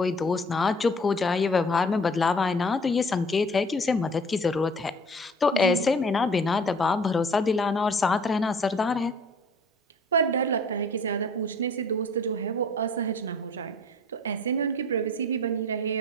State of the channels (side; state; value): both; normal; correlation 0.50